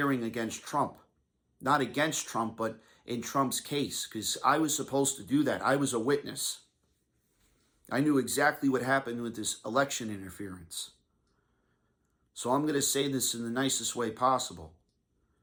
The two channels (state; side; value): identical; both; correlation 1.00